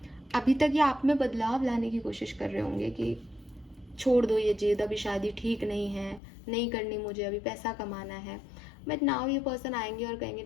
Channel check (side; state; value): right; drops out; at 6.2 s